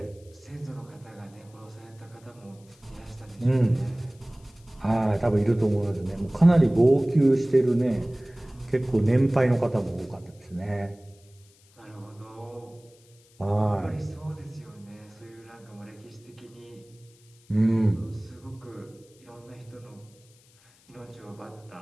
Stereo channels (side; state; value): left; noise; hiss, 29 dB below the sound